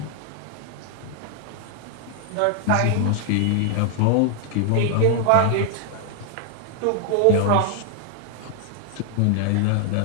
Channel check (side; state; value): both; different; correlation 0.00